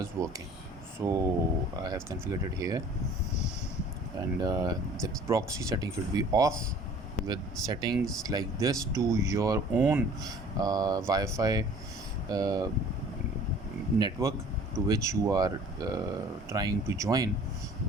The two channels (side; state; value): both; normal; correlation 0.50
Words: working, so I have configured it here. And the proxy setting should be off. With settings like this to your own Wi-Fi network to which you are trying to join